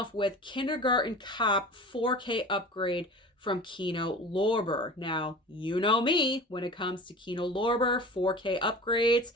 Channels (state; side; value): normal; both; correlation 0.37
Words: with Kindergarten Cop 4K upgrade from Kino Lorber. Now, you know me, when it comes to Kino Lorber 4K upgrades,